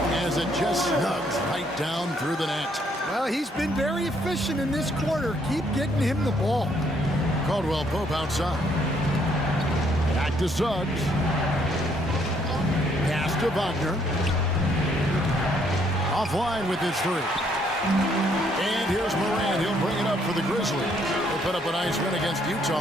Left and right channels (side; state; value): both; normal; correlation 0.68